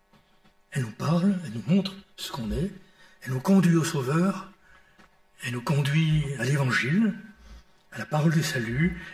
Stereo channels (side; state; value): both; identical; correlation 1.00